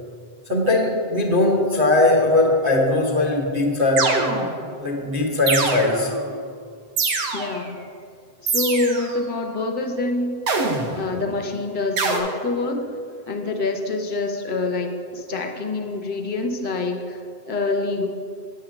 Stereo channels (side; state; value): left; late; 7.8 ms